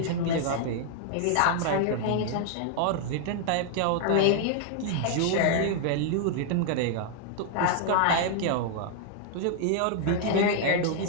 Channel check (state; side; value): different; both; correlation 0.00